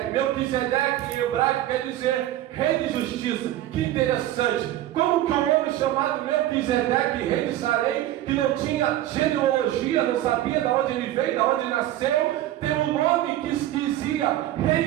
Melquisedeque em hebraico quer dizer rei de justiça. Que interessante. Como que um homem chamado Melquisedeque, rei de Salém, que não tinha genealogia, não sabia de onde ele veio, de onde ele nasceu, tem um nome que dizia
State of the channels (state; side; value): quieter; left; 13.8 dB